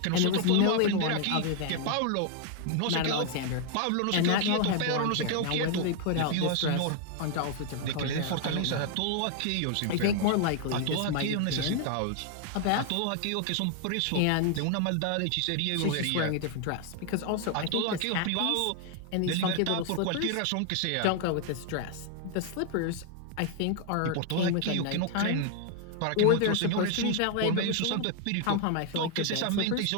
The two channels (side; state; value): both; different; correlation 0.00